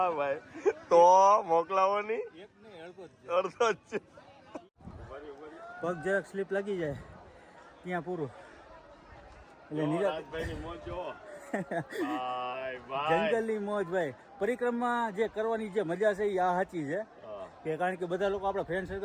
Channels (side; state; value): both; identical; correlation 1.00